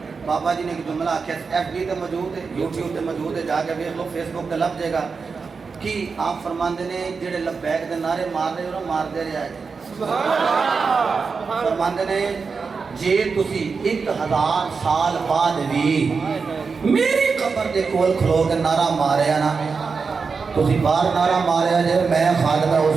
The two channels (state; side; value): quieter; left; 5.0 dB